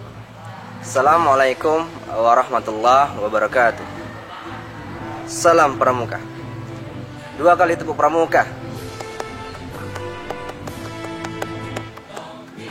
Assalamualaikum warahmatullahi wabarakatuh. Salam Pramuka. Dua kali tepuk Pramuka.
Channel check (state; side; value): identical; both; correlation 1.00